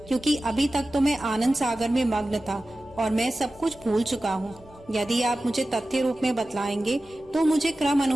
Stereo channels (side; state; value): both; normal; correlation 0.95